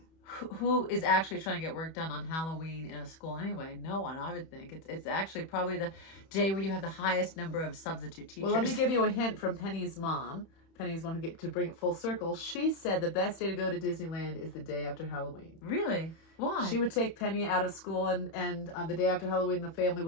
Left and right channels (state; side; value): late; right; 31 ms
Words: who is actually trying to get work done on Halloween in a school anyway? No one, I would think. It's actually probably the day where you have the highest number of substitute teachers. Well, let me give you a hint from Penny's mom. Penny's one who get to bring it full circle. She said the best day to go to Disneyland is the day after Halloween. Really? Why? She would take Penny out of school, and on the day after Halloween, the family